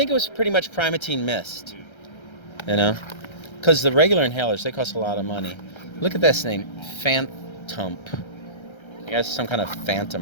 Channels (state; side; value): late; right; 1.3 ms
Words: it was pretty much Primatine Mist. You know? Because the regular inhalers, they cost a lot of money. Look at this name. Phantom. I guess some kind of